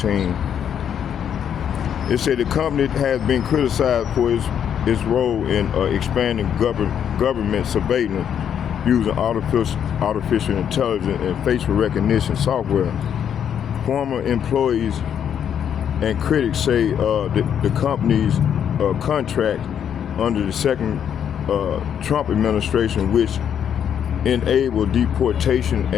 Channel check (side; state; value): right; quieter; 8.7 dB